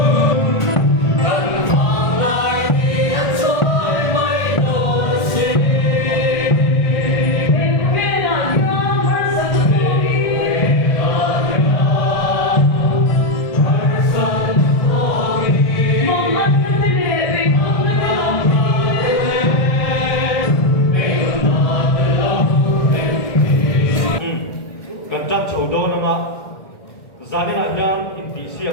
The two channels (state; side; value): late; right; 1.6 ms